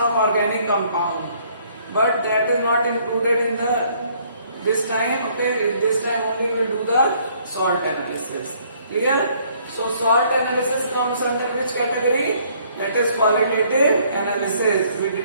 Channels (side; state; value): both; inverted; correlation -0.63